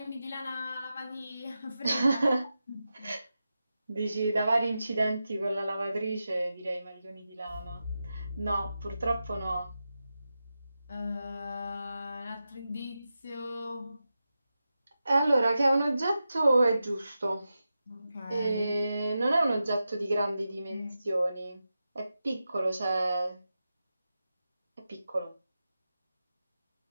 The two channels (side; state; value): both; inverted; correlation -0.91